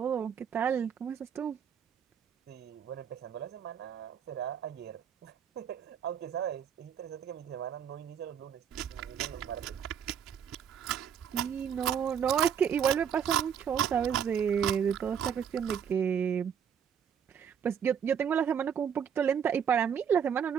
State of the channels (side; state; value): left; quieter; 8.0 dB